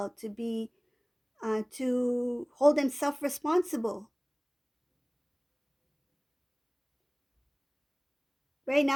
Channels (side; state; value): both; identical; correlation 1.00